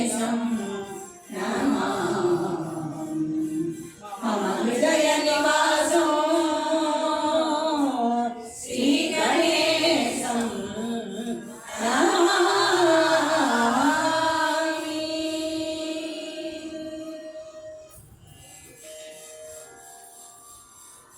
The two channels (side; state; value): both; identical; correlation 1.00